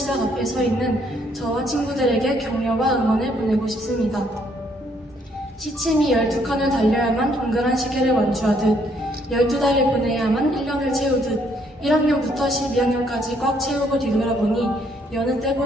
앞에 서 있는 저와 친구들에게 격려와 응원을 보내고 싶습니다. 시침이 12칸을 달려야만 동그란 시계를 완주하듯 12달을 보내야만 1년을 채우듯 1학년부터 12학년까지 꽉 채우고 뒤돌아보니 여느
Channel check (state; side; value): normal; both; correlation 0.69